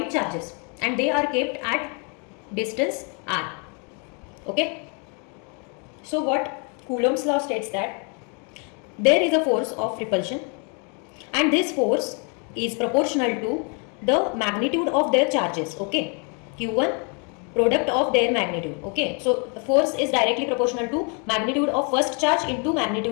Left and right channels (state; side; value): quieter; right; 36.4 dB